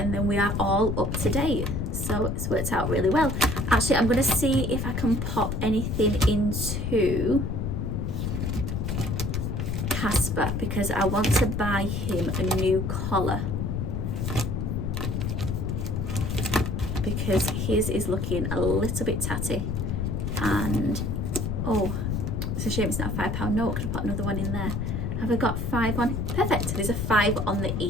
then we are all up to date. So it's worked out really well. Actually, I'm going to see if I can pop anything into Casper, because I want to buy him a new collar, because his is looking a little bit tatty. And oh, it's a shame it's not a £5 note. I could have put another one in there. Have I got 5 on? Perfect. There's a 5 on the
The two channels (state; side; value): noise; left; rumble, 1 dB below the sound